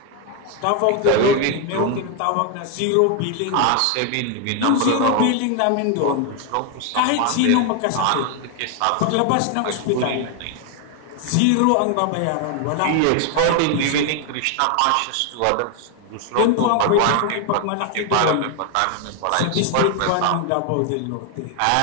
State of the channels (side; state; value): both; different; correlation 0.01